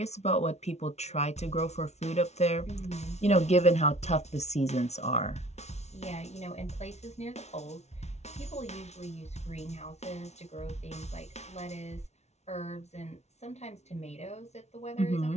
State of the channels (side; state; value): right; late; 0.32 ms